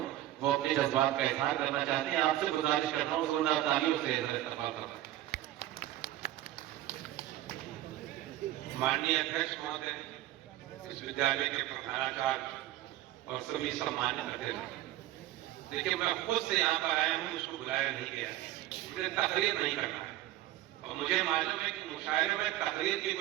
वो अपने जज्बात का इजहार करना चाहते हैं। आपसे गुजारिश करता हूँ जोरदार तालियों से इस्तकबाल करना। माननीय अध्यक्ष महोदय, इस विद्यालय के प्रधानाचार्य और सभी सम्मानित अतिथि, देखिए मैं खुद से यहाँ पर आया हूँ, मुझको बुलाया नहीं गया, मुझे तकरीर नहीं करना है और मुझे मालूम है कि मुशायरे में तकरीर की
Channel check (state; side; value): quieter; left; 14.5 dB